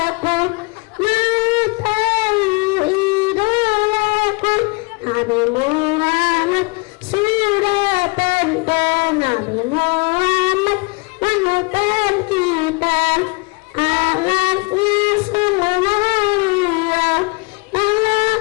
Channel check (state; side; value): quieter; right; 29.1 dB